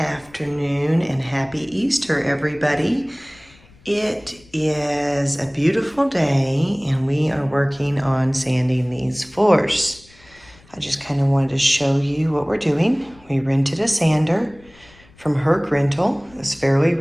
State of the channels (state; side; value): noise; left; rumble, 27 dB below the sound